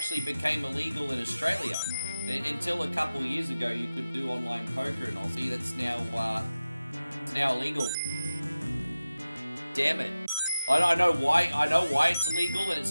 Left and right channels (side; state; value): both; inverted; correlation -0.95